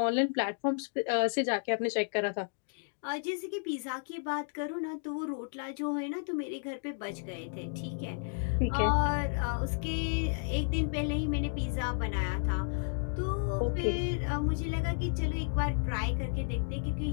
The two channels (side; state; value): right; silent; digital silence